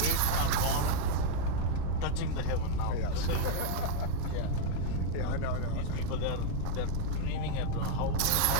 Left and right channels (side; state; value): both; different; correlation 0.00